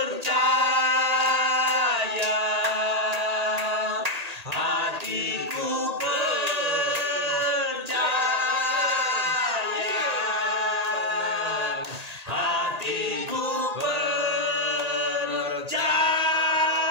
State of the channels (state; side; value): late; left; 1.8 ms